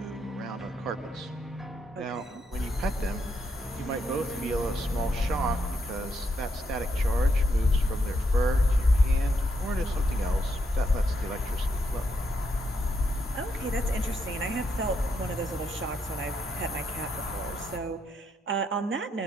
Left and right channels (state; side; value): normal; both; correlation 0.78